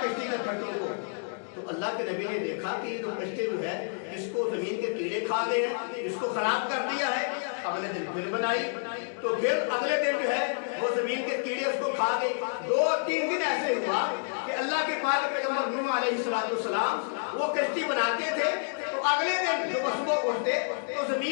کشتی کے پھٹوں کو۔ تو اللہ کے نبی نے دیکھا کہ یہ جو کشتی جو ہے اس کو زمین کے کیڑے کھا گئے ہیں، اس کو خراب کر دیا ہے۔ اگلے دن پھر بنائی تو پھر اگلے دن جو ہے وہ زمین کے کیڑے اس کو کھا گئے۔ 2-3 دن ایسے ہوا کہ اللہ کے پاک پیغمبر نوح علیہ السلام وہ کشتی بناتے تھے تو اگلے دن جو صبح اٹھتے تو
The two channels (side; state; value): right; silent; digital silence